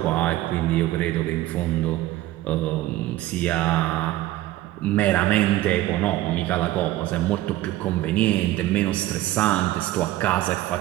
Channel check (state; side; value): quieter; left; 15.7 dB